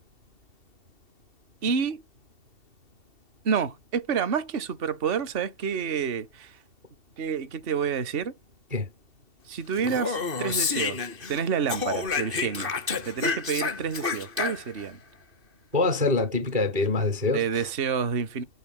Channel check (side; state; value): left; late; 2.6 ms